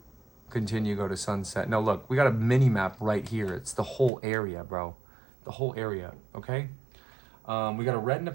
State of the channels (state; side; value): drops out; left; at 4.1 s